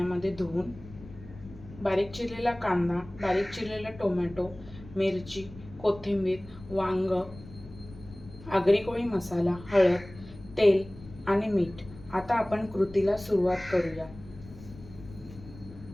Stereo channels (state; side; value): noise; left; rumble, 17 dB below the sound